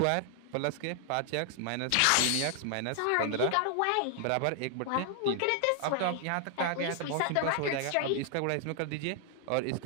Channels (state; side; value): different; both; correlation 0.00